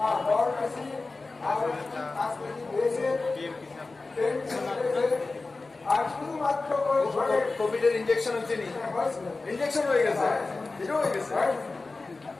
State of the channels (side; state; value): right; quieter; 3.6 dB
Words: কোভিডের injection হচ্ছে নি injection হয়ে গেছে এটা হয়ে গেছে